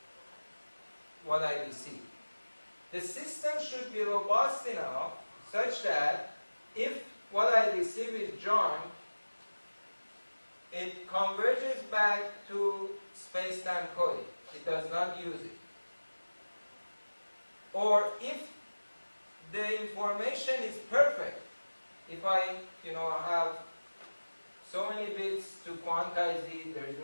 what I receive. The system should be robust enough such that if what I receive is junk, it converges back to space-time coding. It does not use it. Or if the information is perfect, if I have so many bits to quantize it, there is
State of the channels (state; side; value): inverted; both; correlation -1.00